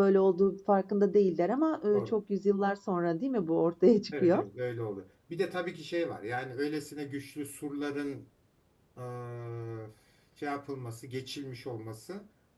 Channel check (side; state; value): both; identical; correlation 1.00